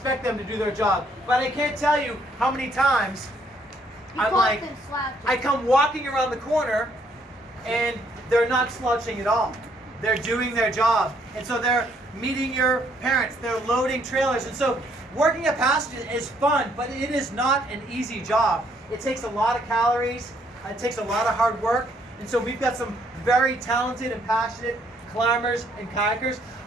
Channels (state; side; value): normal; both; correlation 0.68